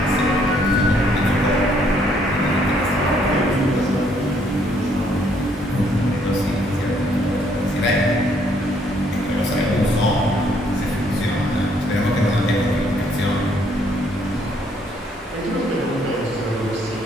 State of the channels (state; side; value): normal; both; correlation 0.67